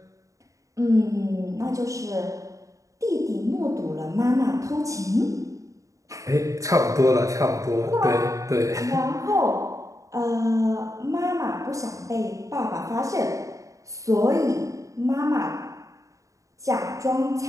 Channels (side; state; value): left; late; 0.16 ms